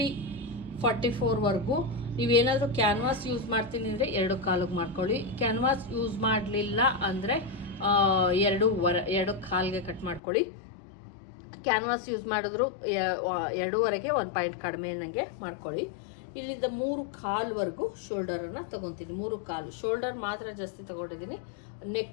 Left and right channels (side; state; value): right; drops out; at 10.2 s